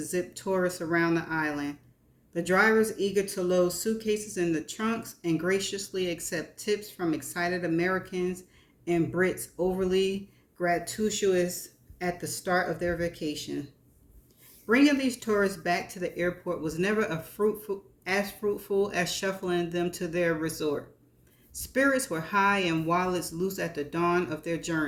zip tourists around the island. The drivers eager to load suitcases in the trunks and graciously accept tips from excited Americans and Brits overly gratuitous at the start of their vacation. Bringing these tourists back to the airport was never fruitful as shuffling them to their resort. Spirits were high and wallets loose at the dawn of their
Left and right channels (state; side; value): identical; both; correlation 1.00